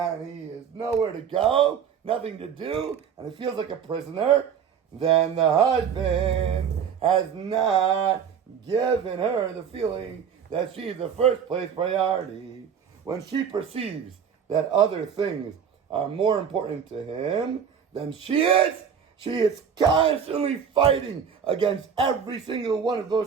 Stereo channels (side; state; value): left; quieter; 7.5 dB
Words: he has nowhere to go, nothing to do, and he feels like a prisoner, then the husband has not given her the feeling that she's the first place priority. When she perceives that other things are more important to him than she is constantly fighting against every single one of